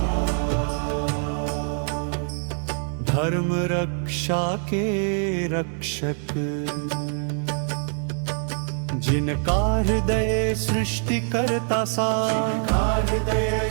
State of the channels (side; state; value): left; silent; 59 dB below the other